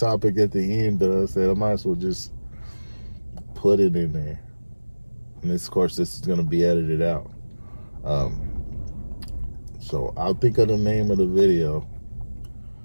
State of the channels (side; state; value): both; inverted; correlation -1.00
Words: at the end, but I said I might as well just put it in there. And this, of course, this is gonna be edited out. So I'll think of the name of the video.